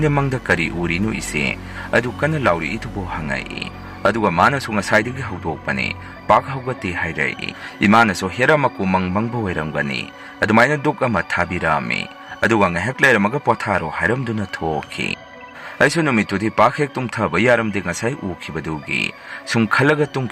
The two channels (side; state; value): both; identical; correlation 1.00